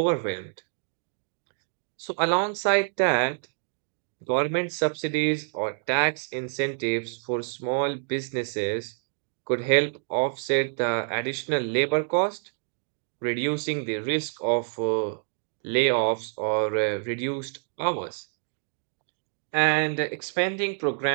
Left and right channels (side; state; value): left; silent; digital silence